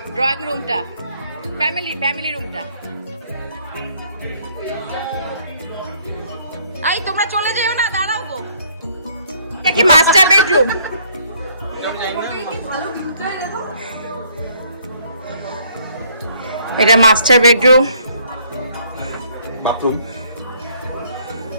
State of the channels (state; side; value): inverted; both; correlation -0.64